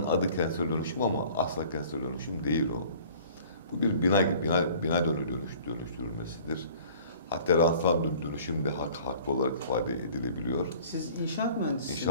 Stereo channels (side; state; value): both; inverted; correlation -0.50